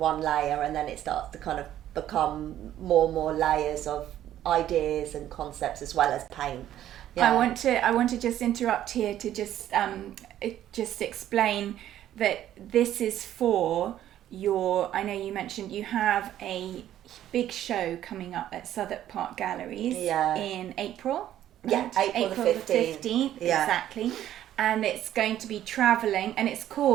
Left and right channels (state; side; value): quieter; left; 12.0 dB